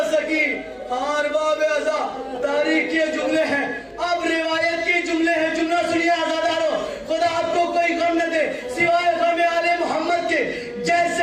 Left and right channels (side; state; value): both; identical; correlation 1.00